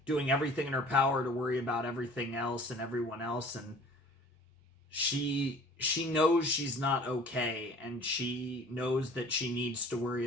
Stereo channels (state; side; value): normal; both; correlation 0.48